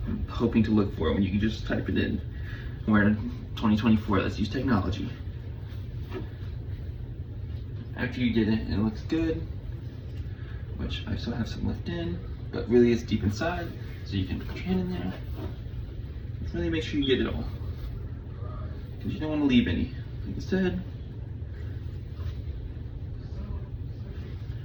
hoping to look for it when you can just type it in. We're in 2024, let's use technology. After you did it, it looks good, which I still have some left in, but really it's deep inside, so you can put your hand in there. Really make sure you get it all, because you don't want to leave any. Instead,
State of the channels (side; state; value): both; identical; correlation 1.00